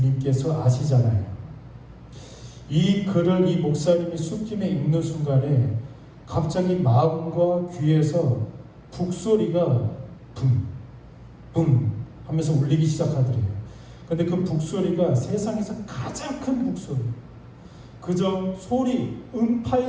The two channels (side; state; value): both; identical; correlation 1.00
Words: 아시잖아요. 이 글을 이 목사님이 술김에 읽는 순간에 갑자기 마음과 귀에서 북소리가 붐 하면서 울리기 시작하더래요. 근데 그 북소리가 세상에서 가장 큰 북소리, 그저 소리,